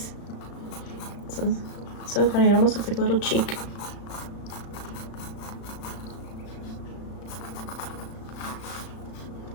So funny, it almost looks like a little cheek.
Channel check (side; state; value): right; late; 35 ms